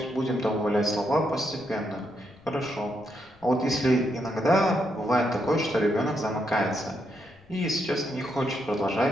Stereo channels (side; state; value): left; noise; rumble, 28 dB below the sound